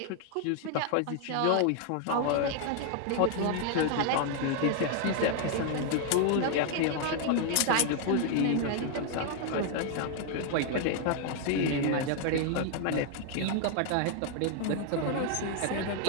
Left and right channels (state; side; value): different; both; correlation 0.00